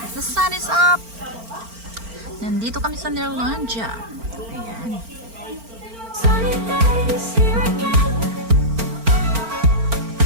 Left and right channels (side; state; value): left; late; 4.4 ms